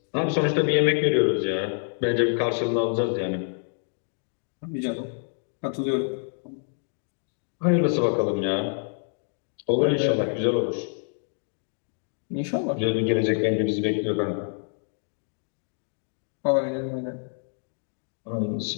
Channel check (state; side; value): silent; right; 60 dB below the other